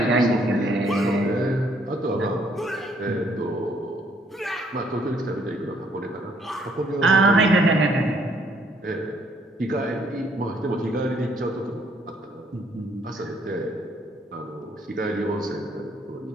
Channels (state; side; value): normal; both; correlation 0.66